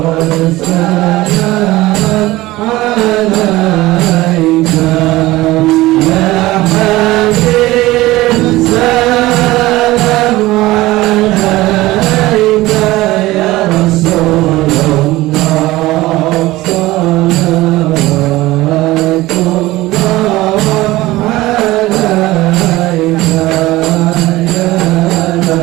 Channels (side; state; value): left; quieter; 18.3 dB